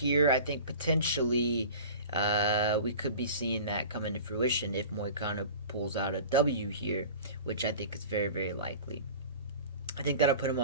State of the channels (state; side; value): inverted; both; correlation -0.38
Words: I think potentially we could be seeing that come into fruition if Moicano pulls out a W here, which I think is very, very likely. I think that'll put him